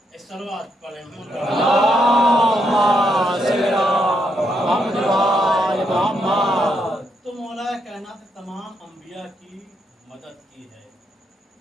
صلوات پڑھیں تو مولا کائنات تمام انبیاء کی مدد کی ہے۔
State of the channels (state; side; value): normal; both; correlation 0.78